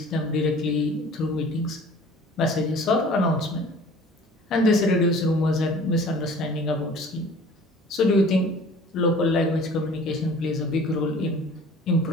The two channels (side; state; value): both; normal; correlation 0.47